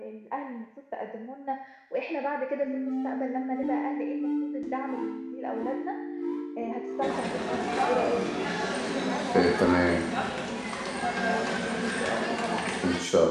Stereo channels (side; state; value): both; identical; correlation 1.00